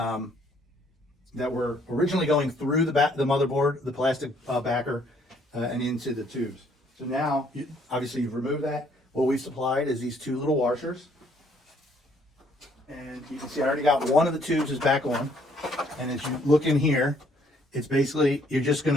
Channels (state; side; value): normal; both; correlation 0.65